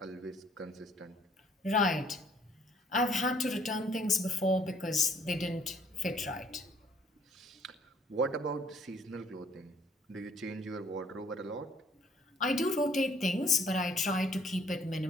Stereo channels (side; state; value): both; normal; correlation 0.61